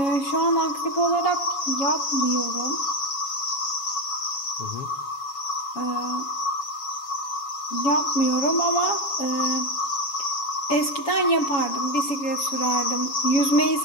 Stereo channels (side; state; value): right; late; 7.1 ms